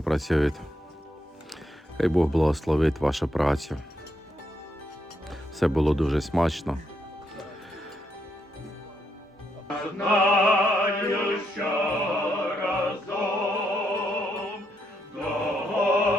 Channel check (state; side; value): normal; both; correlation 0.78